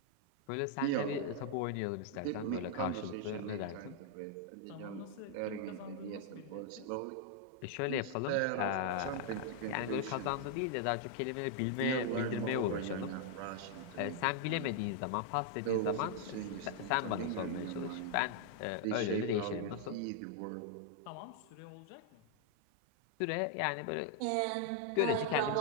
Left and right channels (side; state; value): both; different; correlation 0.00